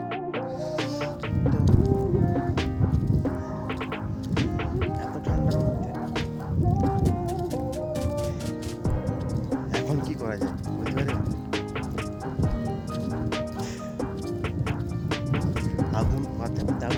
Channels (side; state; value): both; identical; correlation 1.00